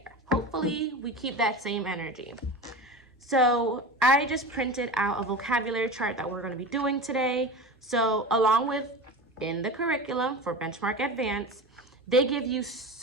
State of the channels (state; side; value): normal; both; correlation 0.29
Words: Hopefully, we keep that same energy. So I just printed out a vocabulary chart that we're going to be doing today. So along with in the curriculum for Benchmark Advance, they give you